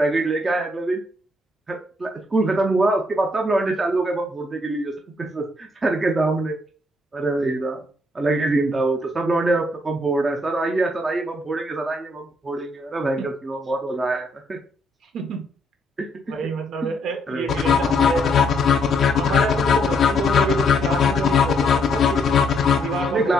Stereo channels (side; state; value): both; normal; correlation 0.72